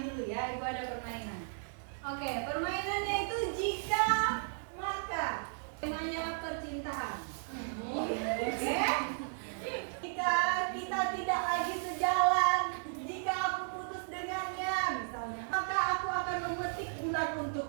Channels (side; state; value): left; silent; 55 dB below the other